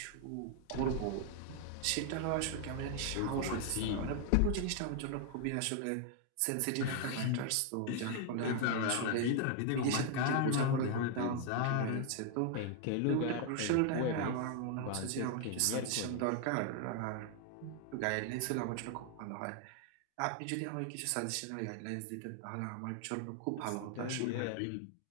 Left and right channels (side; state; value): both; different; correlation 0.00